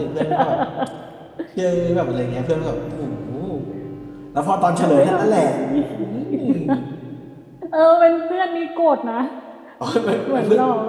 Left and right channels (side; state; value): both; identical; correlation 1.00